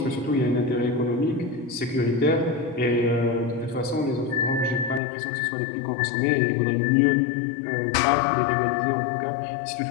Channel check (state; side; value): drops out; right; at 5.0 s